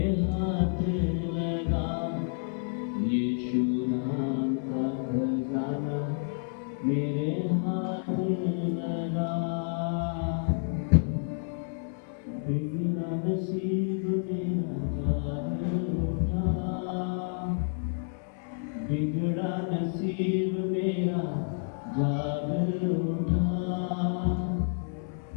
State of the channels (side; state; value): right; silent; 58 dB below the other